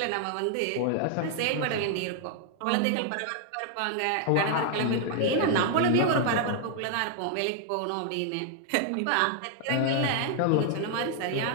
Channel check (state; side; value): different; both; correlation 0.00